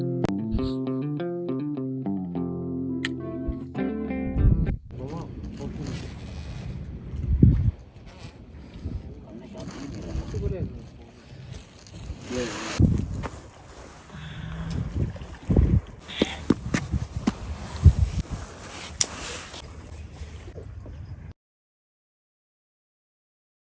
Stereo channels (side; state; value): both; identical; correlation 1.00